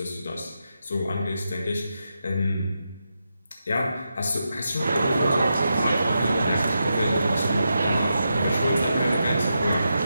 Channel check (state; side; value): inverted; both; correlation -0.86